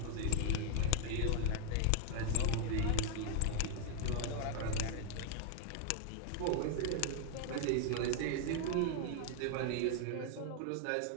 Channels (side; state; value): both; different; correlation 0.00